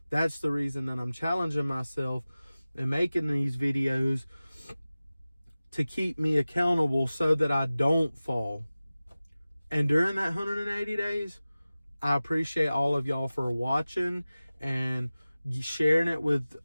That's the reason that I'm challenging myself and making these videos, to keep me accountable so that I don't fall. And during that 180 days, I appreciate all of y'all for watching and sharing it with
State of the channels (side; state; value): both; inverted; correlation -0.97